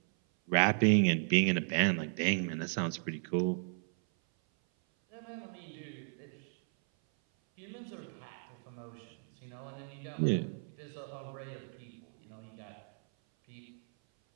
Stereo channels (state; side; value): silent; left; 54 dB below the other